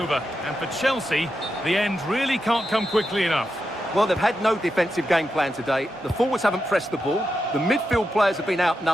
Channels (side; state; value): both; normal; correlation 0.87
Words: and for Chelsea, the end really can't come quickly enough. Well, they've had no defensive game plan today. The forwards haven't pressed the ball, the midfield players have been